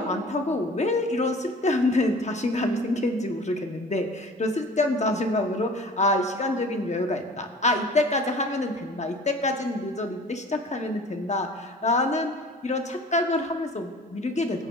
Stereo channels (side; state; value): both; normal; correlation 0.45